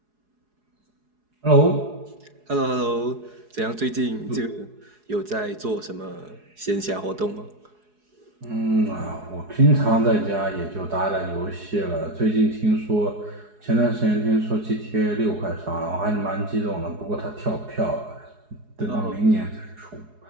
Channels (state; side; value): late; left; 4.8 ms